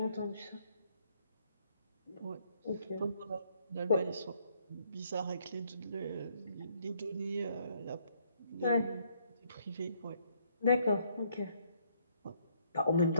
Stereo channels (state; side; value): inverted; both; correlation -0.69